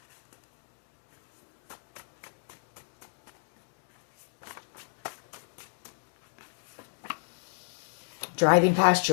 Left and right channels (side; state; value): right; silent; 56 dB below the other